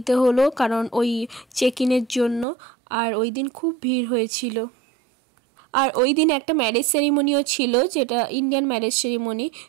হলো, কারণ ওই চেক ইনের জন্য। আর ওই দিন খুব ভিড় হয়েছিল। আর ওই দিন একটা ম্যারেজ সেরিমনিও ছিল, যেটা ইন্ডিয়ান ম্যারেজ সেরিমনি।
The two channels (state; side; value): drops out; left; at 2.5 s